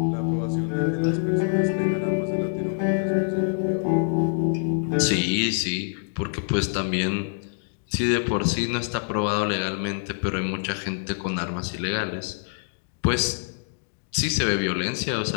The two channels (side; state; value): right; silent; digital silence